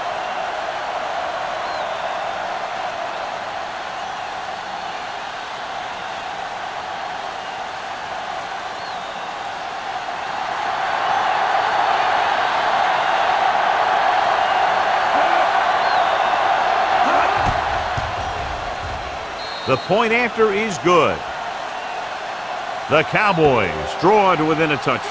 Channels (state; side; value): identical; both; correlation 1.00